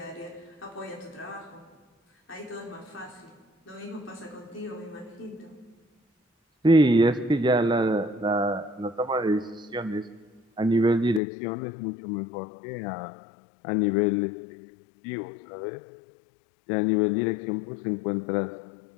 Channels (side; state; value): right; drops out; at 11.2 s